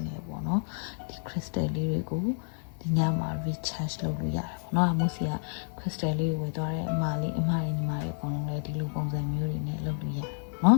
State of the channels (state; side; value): silent; right; 58 dB below the other